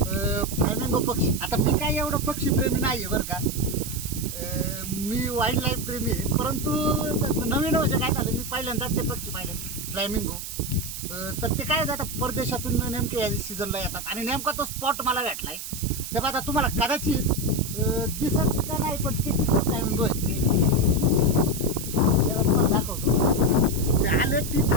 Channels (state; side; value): noise; right; hiss, 8 dB below the sound